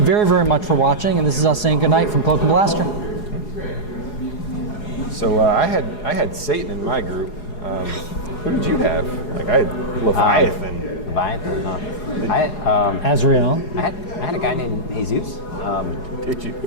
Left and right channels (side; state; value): right; late; 4.8 ms